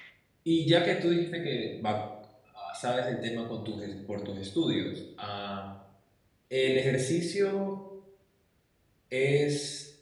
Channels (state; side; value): identical; both; correlation 1.00